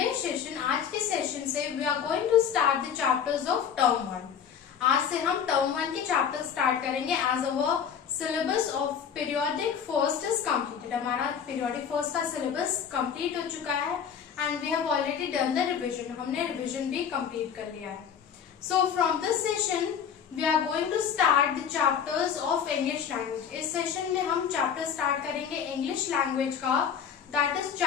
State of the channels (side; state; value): right; quieter; 7.7 dB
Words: session, आज के session से we are going to start the chapters of term 1. आज से हम term 1 के चैप्टर स्टार्ट करेंगे as our syllabus of periodic first is completed. हमारा periodic first का syllabus complete हो चुका है and we have already done the revision. हमने revision भी complete कर लिया है. So from this session we are going to start the chapters of English language. इस सेशन में हम चैप्टर स्टार्ट करेंगे इंग्लिश लैंग्वेज का. दैट इज